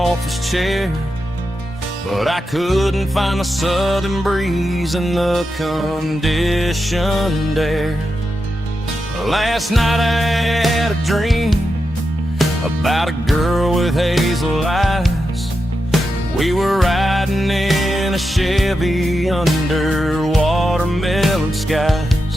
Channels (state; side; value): normal; both; correlation 0.88